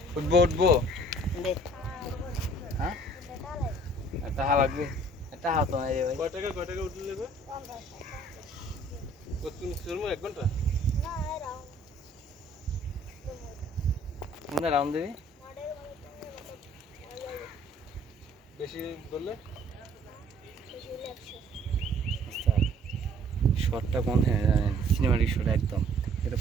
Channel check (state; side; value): normal; both; correlation 0.57